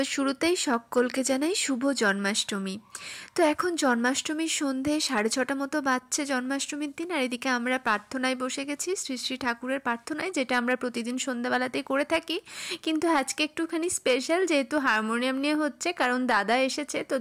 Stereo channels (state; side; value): identical; both; correlation 1.00